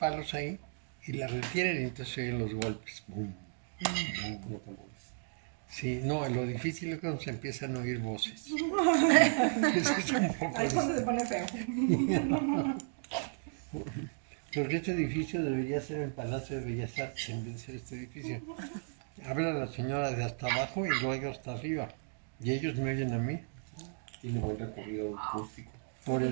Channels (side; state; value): left; silent; digital silence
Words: ahí y la retiran y entonces se oyen los golpes. ¡Bum! ¡Bum! Sí, no, lo difícil es cuando se empiezan a oír voces. Eso es un poco... Ahí es cuando se pone feo. Porque este edificio debería ser el Palacio de Bellas Artes en vez de ser este edificio. Habla la señora de hasta abajo y luego hasta arriba. Y ellos me oyen a mí. Tiene buen recorrido acústico. Por